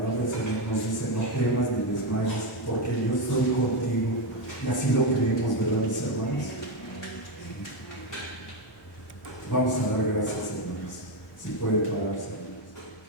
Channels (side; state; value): both; normal; correlation 0.08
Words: del Señor nos dice, no temas ni desmayes, porque yo estoy contigo. Y así lo creemos, ¿verdad, mis hermanos? Vamos a dar gracias, hermanos. Si puede pararse.